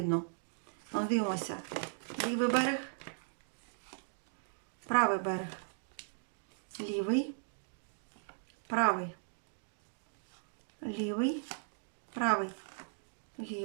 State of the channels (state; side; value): silent; left; digital silence